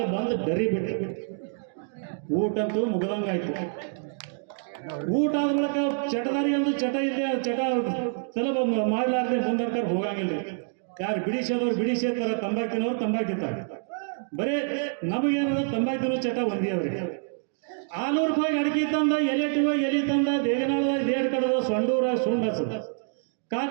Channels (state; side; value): silent; left; 60 dB below the other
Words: ಬಂದು ಡರಿ ಬಿಟ್ಟು ಊಟಂತೂ ಮುಗದಂಗಾಯ್ತು. ಊಟ ಆದ ಬಳಿಕ ಚಟದಾರಿ ಒಂದು ಚಟ ಇದೆ. ಚಟ ಸುಲಭ ಮಾಡಲಾರ್ದೆ ಮುಂದರ್ಕರ್ ಹೋಗಂಗಿಲ್ಲ. ಯಾರು ಬಿಡಿಸೋದವ್ರು ಬಿಡಿಸಿರ್ತಾರ. ತಂಬಾಕು ತಿನ್ನೋರು ತಂಬಾಕು ತಿಂತಾರೆ. ಬರೇ ನಮಗೇನದ ತಂಬಾಕು ತಿನ್ನೋ ಚಟ ಒಂದೇ ಅವ್ರಿಗೆ. 600 ರೂಪಾಯಿ ಅಡಿಕೆ ತಂದ. ಎಲೆ ತಂದ. ದೇಗನಾಳದಾಗ ದೇಡ್ ಕಡದ. ಸೊಂಡೂರಾಗ ಸುಂಡ್ ಹಚ್ಚದ.